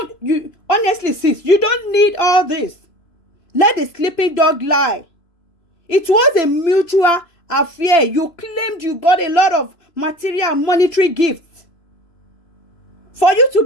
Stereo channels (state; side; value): late; right; 3.0 ms